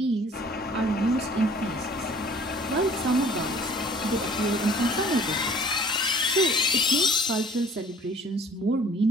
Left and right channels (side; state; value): both; normal; correlation 0.53